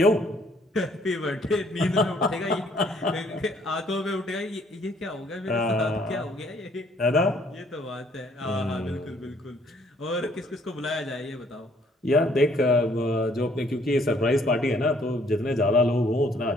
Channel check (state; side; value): normal; both; correlation 0.63